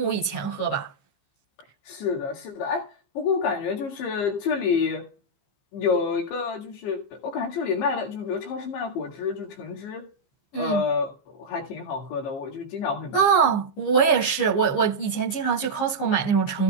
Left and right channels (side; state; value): right; late; 15 ms